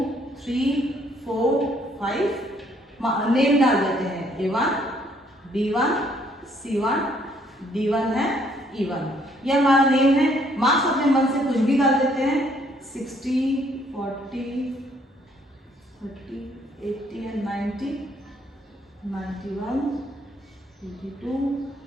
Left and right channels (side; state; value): both; normal; correlation 0.66